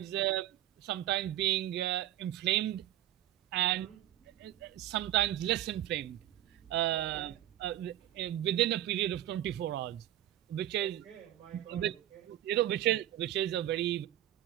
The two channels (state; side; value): quieter; left; 13.2 dB